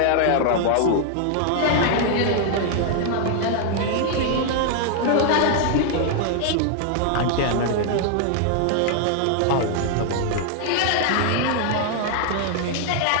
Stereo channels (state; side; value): different; both; correlation 0.00